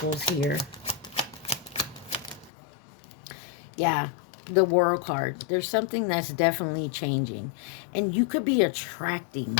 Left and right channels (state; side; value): drops out; right; at 2.5 s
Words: here? Yeah, the World card. There's something that's definitely changing. And you could be attracting